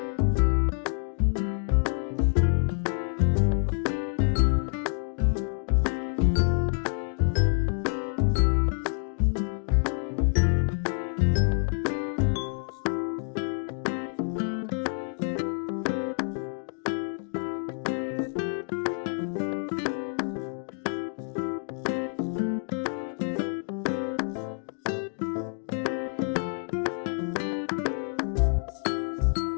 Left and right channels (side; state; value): right; silent; 60 dB below the other